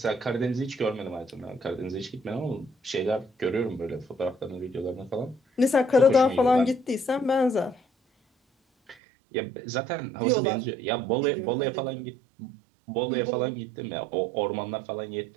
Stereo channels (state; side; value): drops out; left; at 9.0 s